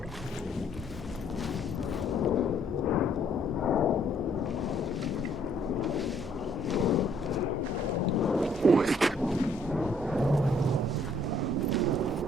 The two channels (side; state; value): both; normal; correlation 0.65